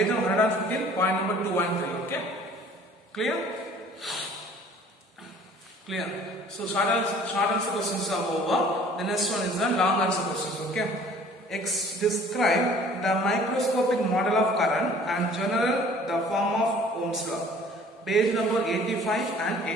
number 115, point number 2 and 3. Okay? Clear? Clear. So short answer questions are over. The next one is the long answer questions. Okay? Describe the microscopic model of current and general the form of Ohm's law. Page number 85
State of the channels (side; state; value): both; normal; correlation 0.52